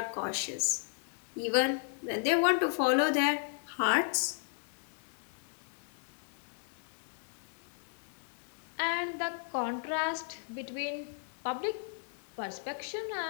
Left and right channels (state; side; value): silent; right; 55 dB below the other